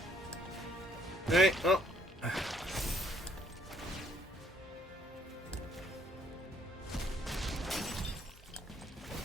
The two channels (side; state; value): both; normal; correlation 0.65